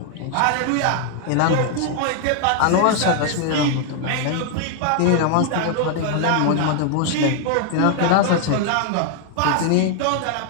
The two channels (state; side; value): different; both; correlation 0.00